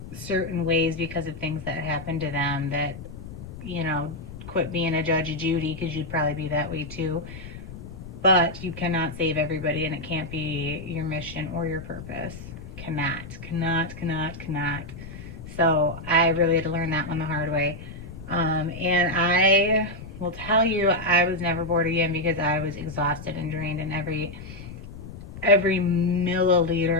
certain ways because of things that happen to them. That, you know, quit being a Judge Judy, because you'd probably be that way too. But you cannot save everybody, and it can't be your mission or your purpose. Cannot. So I really had to learn that one the hard way. And I will tell you, I was never bored again because I was exhausted and drained, and every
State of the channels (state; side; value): noise; left; rumble, 12 dB below the sound